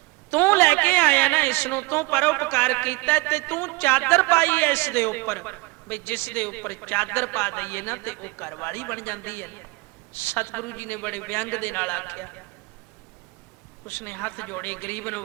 ਤੂੰ ਲੈ ਕੇ ਆਇਆ ਨਾ ਇਸ ਨੂੰ, ਤੂੰ ਪਰਉਪਕਾਰ ਕੀਤਾ ਤੇ ਤੂੰ ਚਾਦਰ ਪਾਈ ਐ ਇਸ ਦੇ ਉੱਪਰ, ਬਈ ਜਿਸ ਦੇ ਉੱਪਰ ਚਾਦਰ ਪਾ ਦਈਏ ਨਾ ਤੇ ਉਹ ਘਰਵਾਲੀ ਬਣ ਜਾਂਦੀ ਹੈ। ਸਤਿਗੁਰੂ ਜੀ ਨੇ ਬੜੇ ਵਿਅੰਗ ਦੇ ਨਾਲ ਆਖਿਆ। ਉਸਨੇ ਹੱਥ ਜੋੜੇ, ਗਰੀਬ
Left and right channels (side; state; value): left; quieter; 24.3 dB